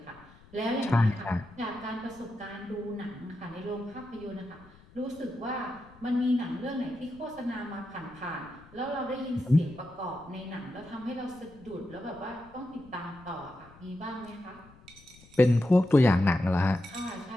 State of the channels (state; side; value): noise; left; rumble, 24 dB below the sound